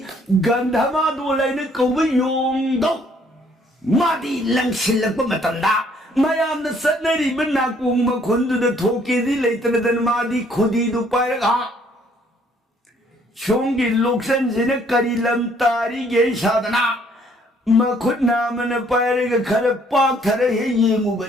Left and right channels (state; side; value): normal; both; correlation 0.63